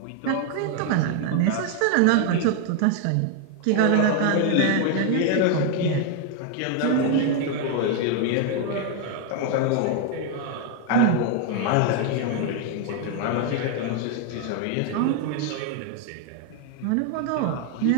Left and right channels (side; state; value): both; different; correlation 0.01